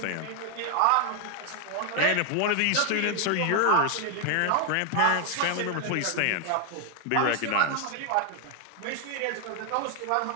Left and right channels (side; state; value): both; different; correlation 0.00